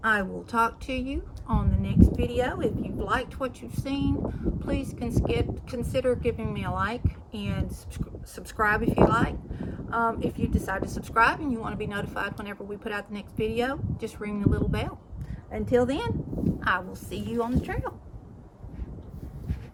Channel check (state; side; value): identical; both; correlation 1.00